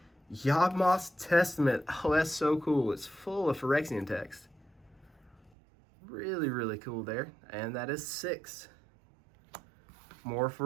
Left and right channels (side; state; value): left; drops out; at 5.5 s